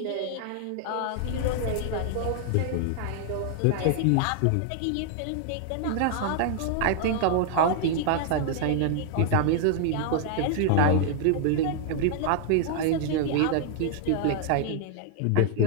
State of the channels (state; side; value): different; both; correlation 0.00